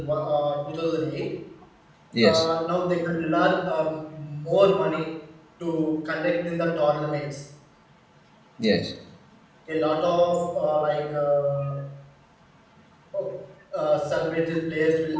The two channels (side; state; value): both; identical; correlation 1.00